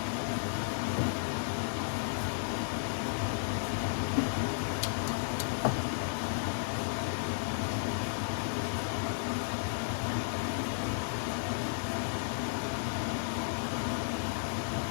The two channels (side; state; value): right; silent; digital silence